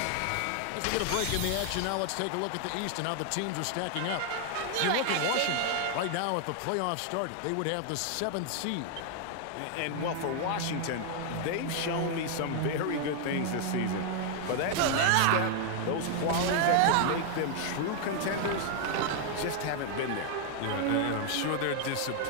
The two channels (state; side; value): different; both; correlation 0.00